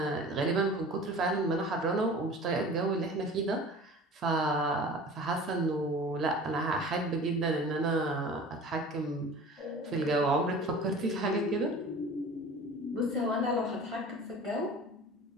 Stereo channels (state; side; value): normal; both; correlation 0.41